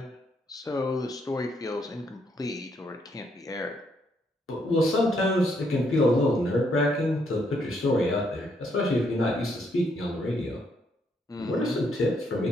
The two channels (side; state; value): both; normal; correlation 0.73